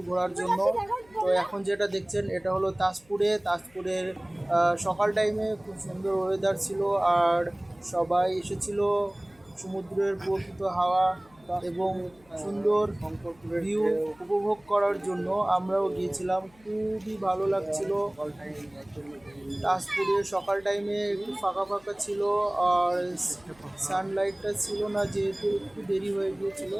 ঘোরার জন্য। তো এখন যেটা দেখছেন এটা হলো তাজপুরের সকাল টাইমে খুব সুন্দর ওয়েদার ছিল, আর সবাই এসেছিল সমুদ্রের প্রকৃত হাওয়া এবং সুন্দর ভিউ উপভোগ করার জন্য। আমরাও গিয়েছিলাম, খুবই ভালো লাগছিল। তাজপুরে সকাল টাইমে একটু ফাঁকা ফাঁকা ছিল, আর সানলাইটটা ছিল না, যেহেতু একটু দেরি হয়ে গিয়েছিল।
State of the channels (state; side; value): noise; left; hum, 29 dB below the sound